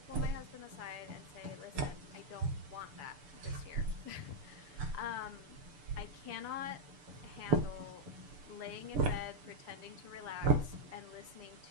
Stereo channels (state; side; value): late; left; 6.9 ms